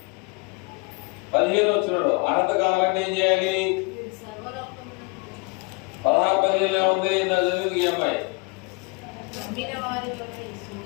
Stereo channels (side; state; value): right; quieter; 30.3 dB